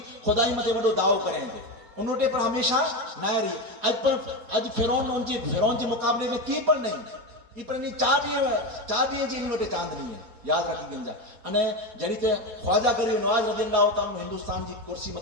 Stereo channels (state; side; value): late; left; 4.2 ms